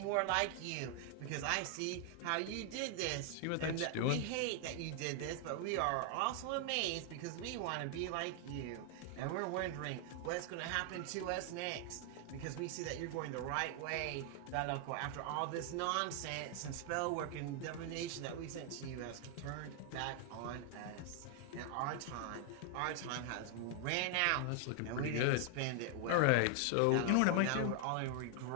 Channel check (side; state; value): both; different; correlation 0.00